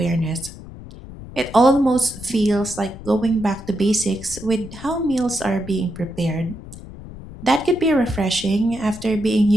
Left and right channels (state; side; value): noise; left; rumble, 14 dB below the sound